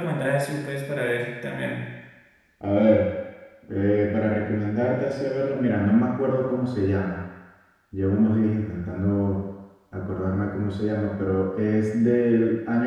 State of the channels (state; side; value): identical; both; correlation 1.00